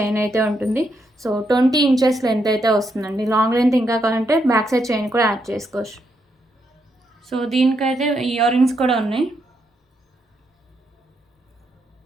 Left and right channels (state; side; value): normal; both; correlation 0.79